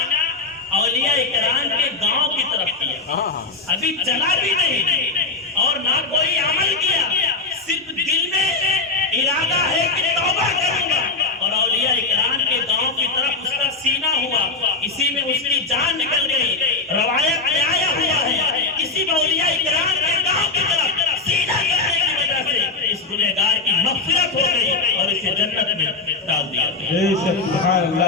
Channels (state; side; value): quieter; right; 3.7 dB